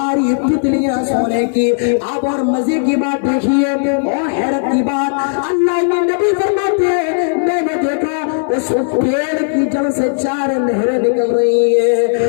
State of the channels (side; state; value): right; silent; digital silence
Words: تتلیاں سونے کی۔ اب اور مزے کی بات دیکھیے اور حیرت کی بات، اللہ کے نبی فرماتے ہیں میں نے دیکھا اس پیڑ کی جڑ سے 4 نہریں نکل رہی